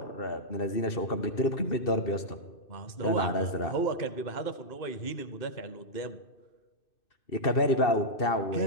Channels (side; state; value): right; late; 2.6 ms